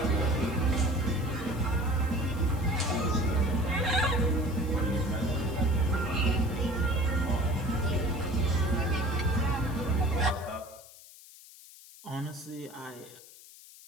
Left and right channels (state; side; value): noise; left; hiss, 20 dB below the sound